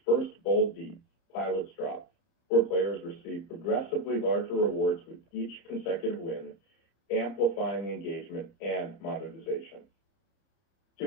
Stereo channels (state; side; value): late; right; 30 ms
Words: first bold beat, Pilot's Drop, where players receive progressively larger rewards with each consecutive win, amplifying engagement and monetization.